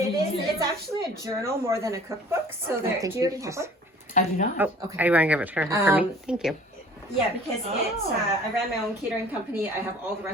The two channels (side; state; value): both; normal; correlation 0.50